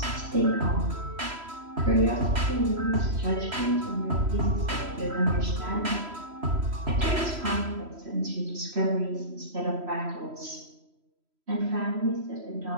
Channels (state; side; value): late; left; 3.1 ms